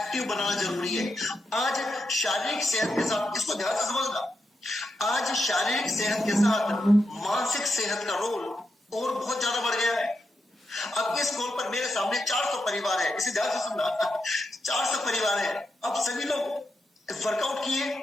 बनाना जरूरी है। आज शारीरिक सेहत के साथ, इसको ध्यान से समझना, आज शारीरिक सेहत के साथ मानसिक सेहत का रोल और बहुत ज्यादा बढ़ गया है। अब इस कॉल पर मेरे सामने 400 परिवार है, इसे ध्यान से सुनना 400 परिवार है। अब सभी लोग वर्कआउट किए,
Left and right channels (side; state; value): both; normal; correlation 0.85